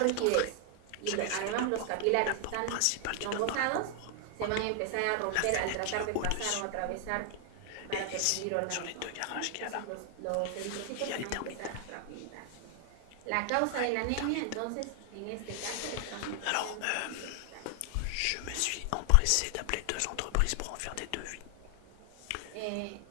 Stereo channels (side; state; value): both; different; correlation 0.00